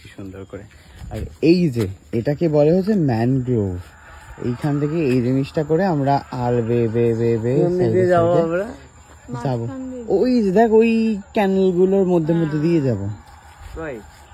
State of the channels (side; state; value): both; identical; correlation 1.00